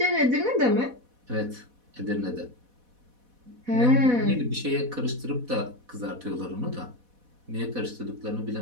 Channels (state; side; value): late; left; 4.1 ms